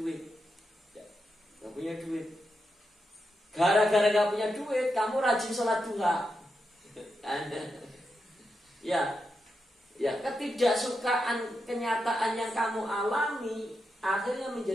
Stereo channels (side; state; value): both; normal; correlation 0.86